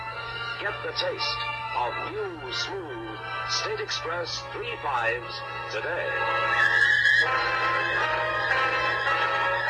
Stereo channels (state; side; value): identical; both; correlation 1.00